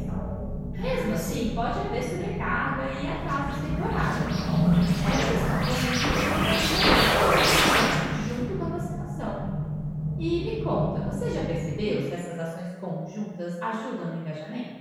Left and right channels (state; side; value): identical; both; correlation 1.00